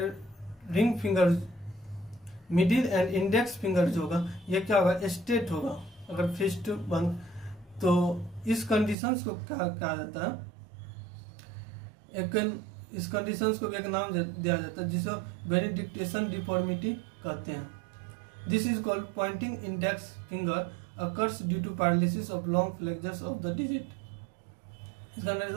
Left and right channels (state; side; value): drops out; left; at 9.0 s